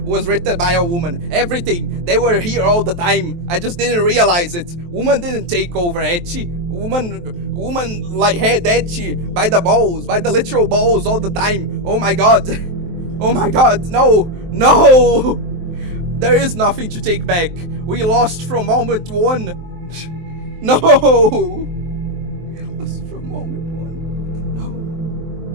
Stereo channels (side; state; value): left; late; 23 ms